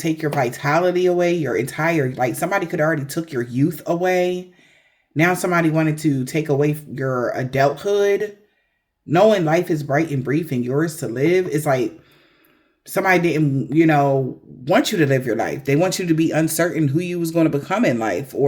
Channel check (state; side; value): identical; both; correlation 1.00